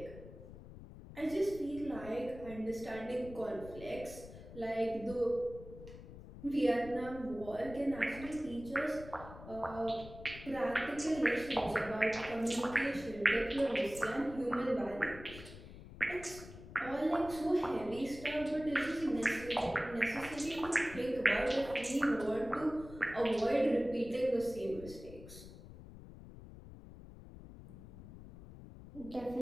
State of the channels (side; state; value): left; noise; rumble, 15 dB below the sound